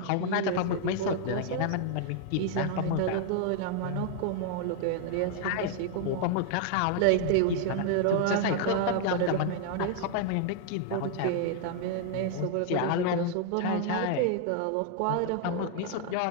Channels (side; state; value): both; different; correlation 0.00